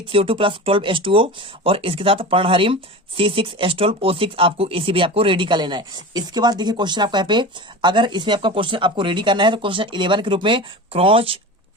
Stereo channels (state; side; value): normal; both; correlation 0.31